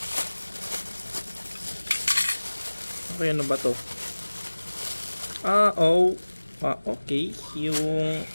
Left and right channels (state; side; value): inverted; both; correlation -1.00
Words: Okay, ano ba to? Okay, yung